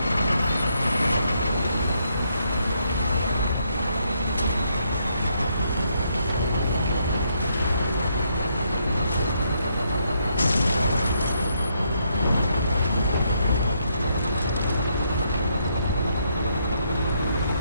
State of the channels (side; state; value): both; inverted; correlation -0.75